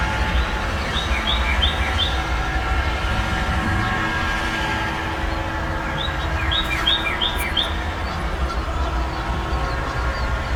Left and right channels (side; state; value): both; identical; correlation 1.00